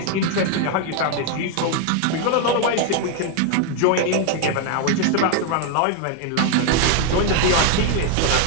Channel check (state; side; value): different; both; correlation 0.00